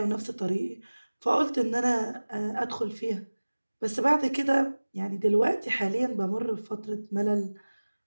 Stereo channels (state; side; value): inverted; both; correlation -1.00